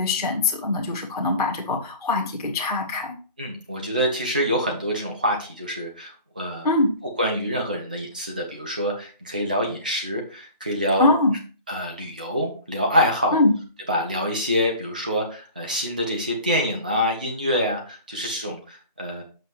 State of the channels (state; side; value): inverted; both; correlation -0.41